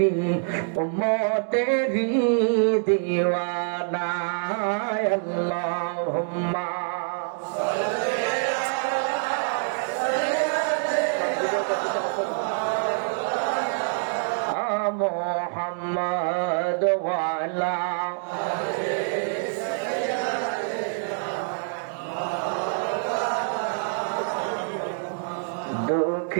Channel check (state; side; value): silent; left; digital silence